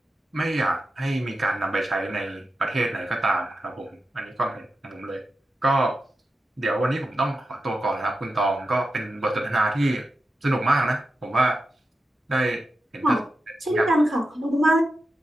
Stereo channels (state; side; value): normal; both; correlation 0.90